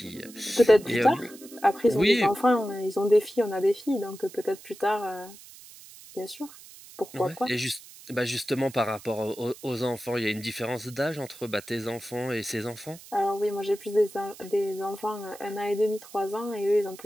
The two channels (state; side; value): noise; right; hiss, 19 dB below the sound